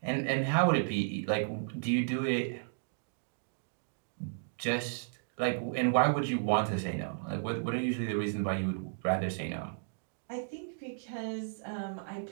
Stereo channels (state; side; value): silent; left; digital silence